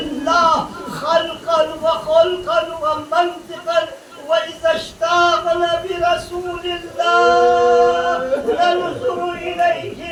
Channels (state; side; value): identical; both; correlation 1.00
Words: خلقا وخلقا ومنطقا وإذا اشتاقنا برسول الله ننظر إليه